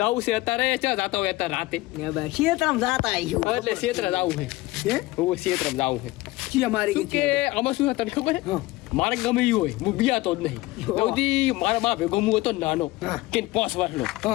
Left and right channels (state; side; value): quieter; right; 19.5 dB